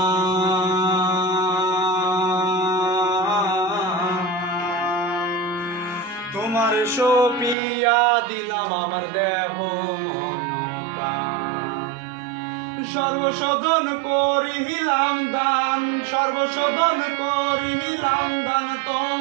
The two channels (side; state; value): left; drops out; at 7.6 s